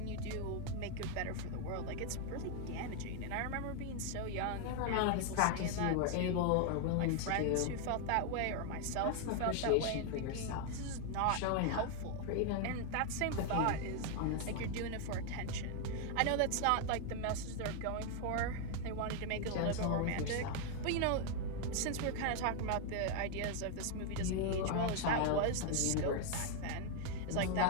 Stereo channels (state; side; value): different; both; correlation 0.00